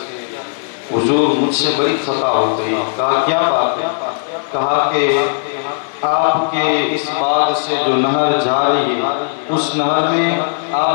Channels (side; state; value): right; silent; digital silence